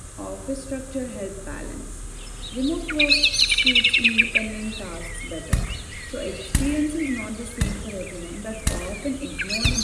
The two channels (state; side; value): identical; both; correlation 1.00